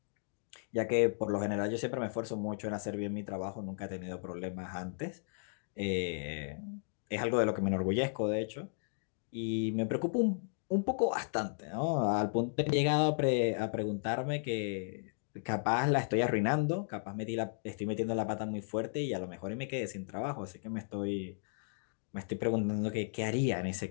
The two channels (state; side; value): silent; right; digital silence